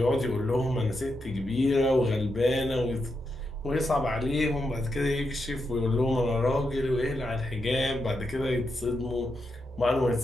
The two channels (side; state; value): both; normal; correlation 0.84